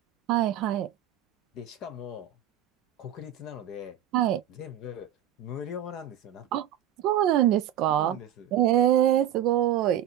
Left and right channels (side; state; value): left; quieter; 10.5 dB